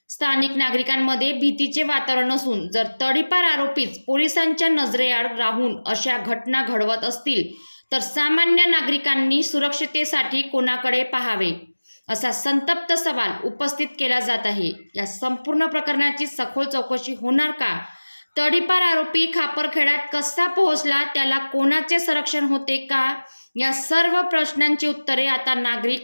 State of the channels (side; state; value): both; inverted; correlation -1.00